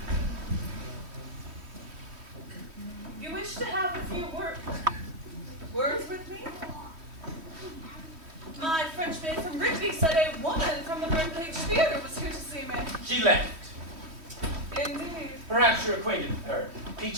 You wish to have a few words with me? My French maid from Rigby said a woman from the Birdcage Theater was here to see me. She left. Indeed. Perhaps you're acquainted with her.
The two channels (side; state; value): left; late; 3.1 ms